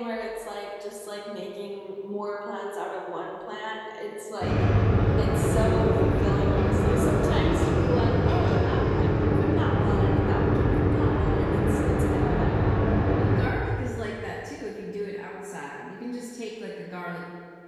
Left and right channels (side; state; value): both; identical; correlation 1.00